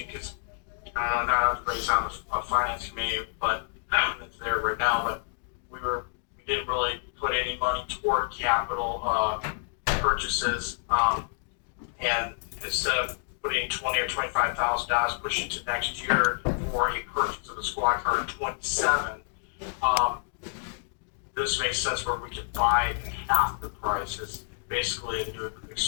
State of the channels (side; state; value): right; silent; digital silence